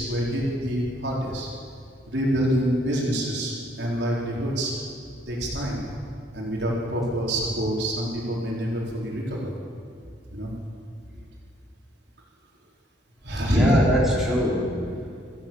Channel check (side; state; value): both; normal; correlation 0.65